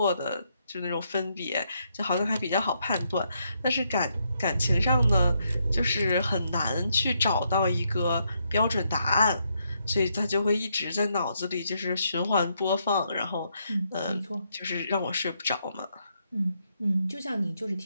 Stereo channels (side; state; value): both; inverted; correlation -0.77